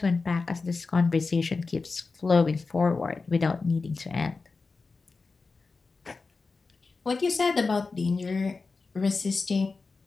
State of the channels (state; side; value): quieter; right; 4.2 dB